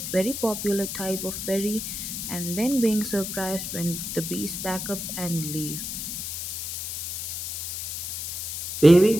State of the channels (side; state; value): left; noise; hiss, 5 dB below the sound